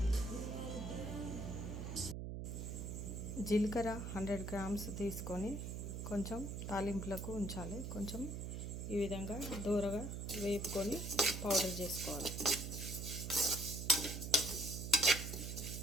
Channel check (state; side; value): noise; right; hum, 5 dB below the sound